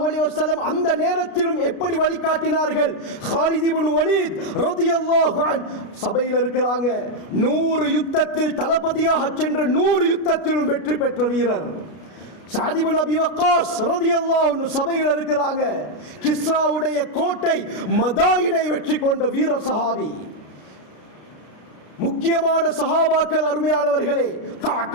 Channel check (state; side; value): late; right; 33 ms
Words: அலைஹி வஸல்லம் அந்த நேரத்திலும் எப்படி வழிகாட்டினார்கள்? காலித் இப்னு வலீத் ரலியல்லாஹு அன்ஹு சபையில் இருக்கிறாங்க. 100 யுத்தத்தில் தளபதியாக சென்று 100 யுத்தத்திலும் வெற்றி பெற்ற வீரர். சஅத் இப்னு அபி வக்காஸ் ரலியல்லாஹு அன்ஹு சபையில் இருக்கிறாங்க. கிஸ்ராவுடைய கோட்டை மதாயினை வெற்றி கொண்ட வீர சஹாபி. முக்கியமான சஹாபாக்கள் அருமையானவர்களே,